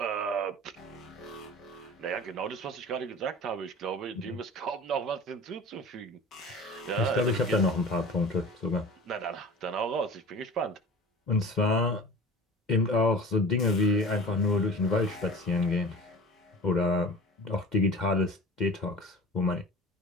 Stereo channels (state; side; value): normal; both; correlation 0.38